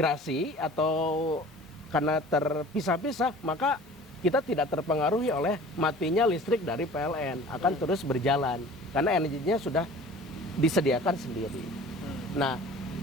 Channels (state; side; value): normal; both; correlation 0.45